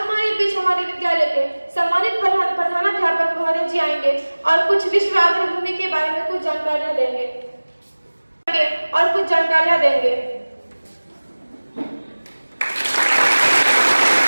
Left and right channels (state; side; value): inverted; both; correlation -1.00